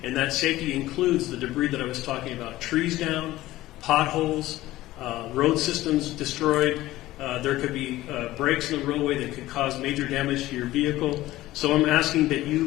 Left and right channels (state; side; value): quieter; right; 16.3 dB